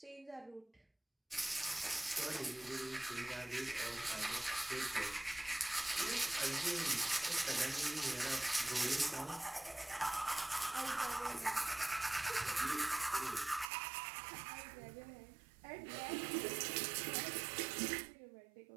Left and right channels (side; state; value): left; drops out; at 13.7 s